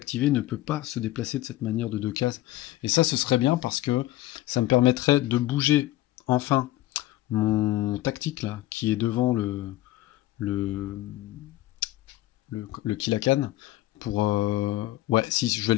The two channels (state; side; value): quieter; right; 15.9 dB